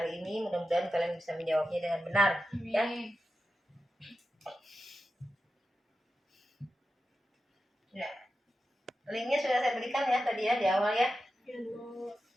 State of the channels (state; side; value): normal; both; correlation 0.91